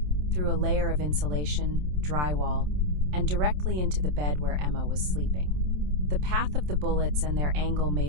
through a layer of insulation, drywall, and directly into the bed where Emma was sleeping. The path of the bullets and their angle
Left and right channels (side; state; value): left; late; 27 ms